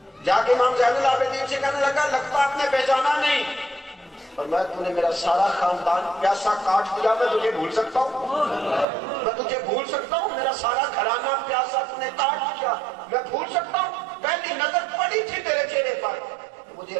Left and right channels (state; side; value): drops out; left; at 8.8 s